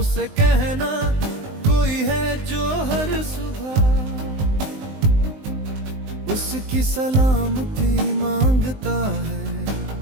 कहना कोई है जो हर सुबह उसकी सलामती मांगता है,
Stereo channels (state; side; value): late; left; 19 ms